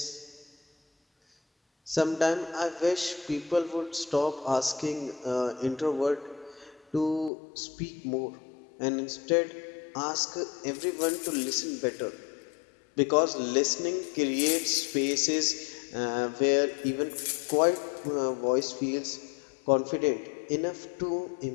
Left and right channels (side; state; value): right; drops out; at 7.3 s